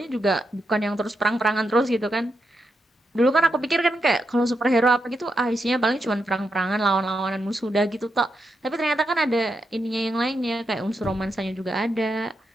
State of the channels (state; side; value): normal; both; correlation 0.84